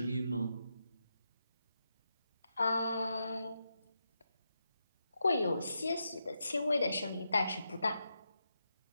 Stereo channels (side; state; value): both; inverted; correlation -0.85